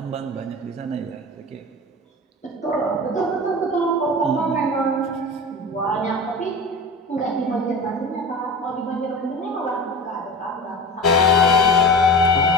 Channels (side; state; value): both; normal; correlation 0.32